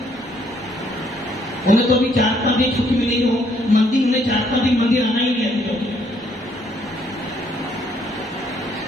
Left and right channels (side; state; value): both; normal; correlation 0.68